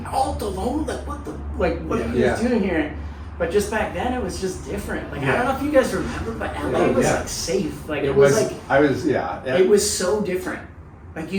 Alta Loma, like what are you guys doing here? But just back then, it was just different. Like I don't know if you guys remember, but LA was like safe. Like it was like it was so different. Like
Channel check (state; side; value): identical; both; correlation 1.00